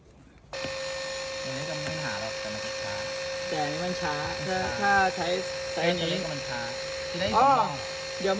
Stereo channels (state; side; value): identical; both; correlation 1.00